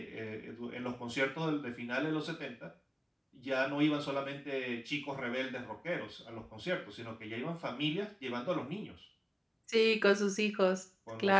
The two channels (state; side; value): identical; both; correlation 1.00